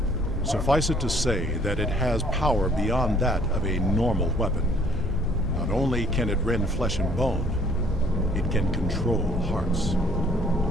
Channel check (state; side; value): normal; both; correlation 0.59